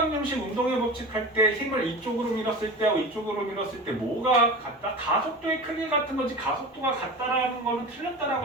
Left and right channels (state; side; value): normal; both; correlation 0.32